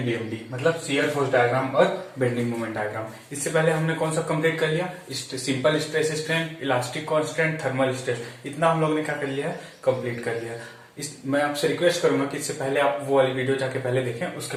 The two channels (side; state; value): both; identical; correlation 1.00